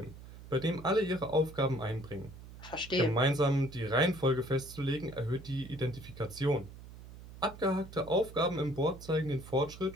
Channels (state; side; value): noise; right; hum, 16 dB below the sound